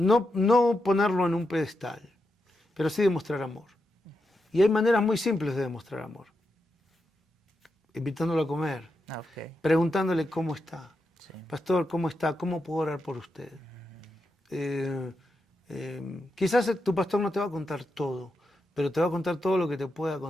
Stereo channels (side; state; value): both; normal; correlation 0.86